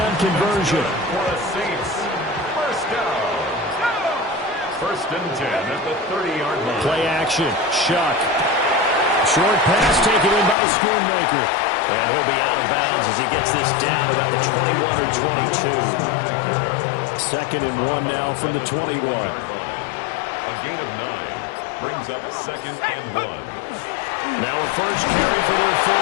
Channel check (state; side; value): drops out; right; at 10.6 s